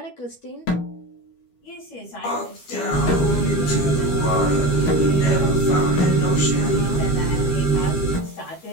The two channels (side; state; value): right; late; 12 ms